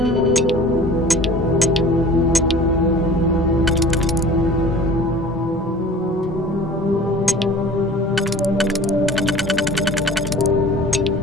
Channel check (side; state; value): both; normal; correlation 0.43